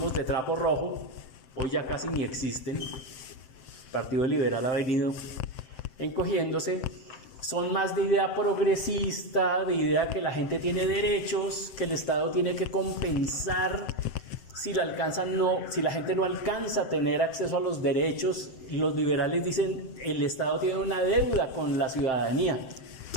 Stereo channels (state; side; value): late; right; 7.7 ms